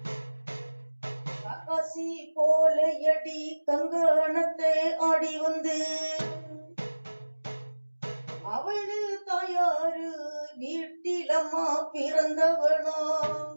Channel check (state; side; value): inverted; both; correlation -1.00